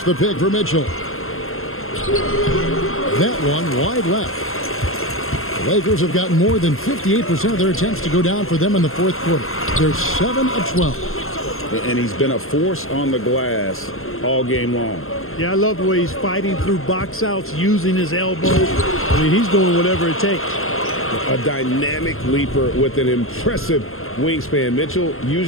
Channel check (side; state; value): right; late; 0.62 ms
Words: the pick for Mitchell. That one wide left. The Lakers have gotten more than 58% of their attempts to go down for them in the fourth quarter. They're 7 of 12. And he's been a force on the glass all game long. Yeah, I love the way he's fighting through box outs, using his elbows. I mean, he's doing whatever it takes. A dynamic leaper with an impressive wingspan. Mitchell